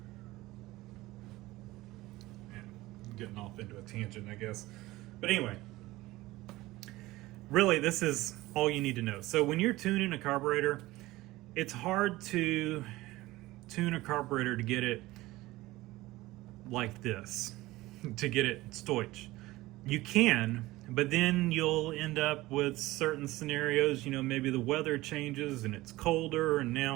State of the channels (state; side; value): quieter; left; 18.6 dB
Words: And getting off into a tangent, I guess. But anyway, really, this is all you need to know. So when you're tuning a carburetor, it's hard to tune a carburetor to get it like this, to get it Stoich. You can, but then you'll end up with certain scenarios, maybe the weather changes and it's colder, and